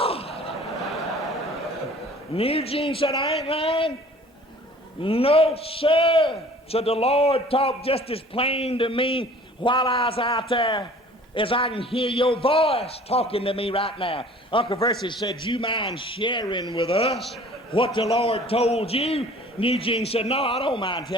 Newgene said, I ain't lying. No, sir. So the Lord talked just as plain to me while I was out there as I can hear your voice talking to me right now. Uncle Versi said, you mind sharing with us what the Lord told you? Newgene said, no, I don't mind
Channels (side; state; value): both; normal; correlation 0.49